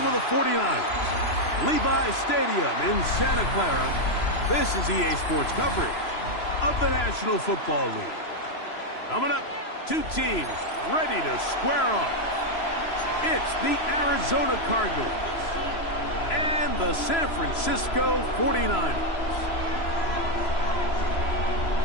of the 49ers, Levi Stadium in Santa Clara, this is EA Sports coverage of the National Football League. Coming up, two teams ready to square off. It's the Arizona Cardinals and the San Francisco 49ers.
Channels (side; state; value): right; late; 3.0 ms